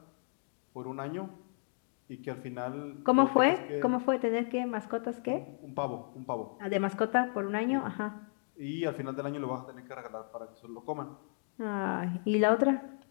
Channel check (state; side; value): silent; right; 55 dB below the other